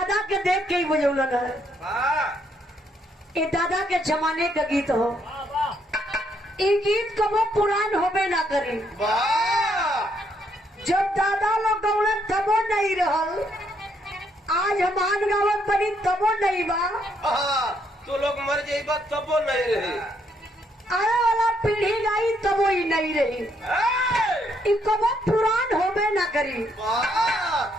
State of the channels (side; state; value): both; normal; correlation 0.72